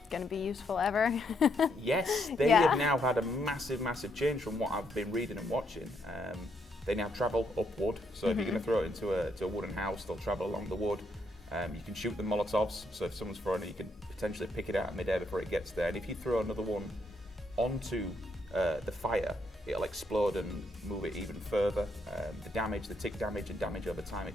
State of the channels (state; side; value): normal; both; correlation 0.75